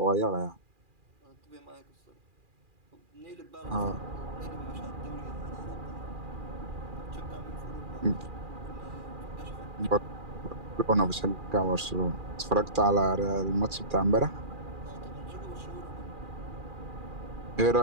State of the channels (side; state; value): left; late; 2.4 ms